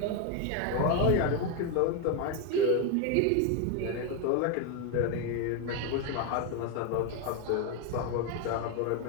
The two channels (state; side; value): different; both; correlation 0.02